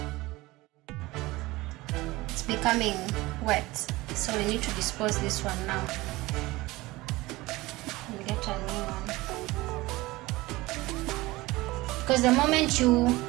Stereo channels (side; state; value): left; quieter; 20.1 dB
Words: It's becoming wet, so we need to dispose this one now and get a new one. Because the moment you